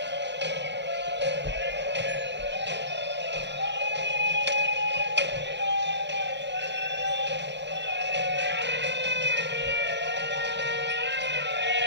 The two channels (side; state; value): left; late; 0.51 ms